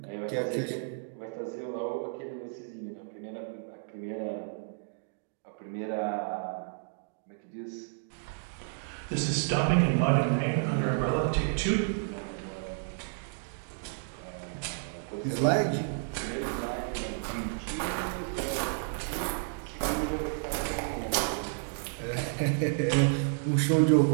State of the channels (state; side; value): silent; left; digital silence